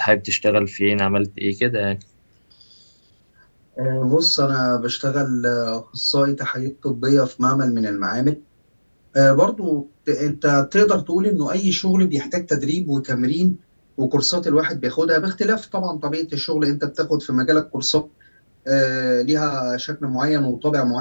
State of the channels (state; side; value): inverted; both; correlation -1.00